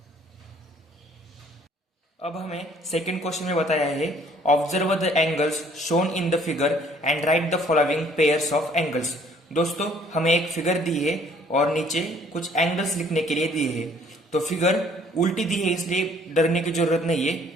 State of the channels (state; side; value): normal; both; correlation 0.59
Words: अब हमें सेकंड क्वेश्चन में बताया है observe the angles shown in the figure and write the following pairs of angles. दोस्तों हमें एक फिगर दी है और नीचे कुछ एंगल्स लिखने के लिए दिए है। तो फिगर उल्टी दी है इसलिए डरने की जरूरत नहीं है,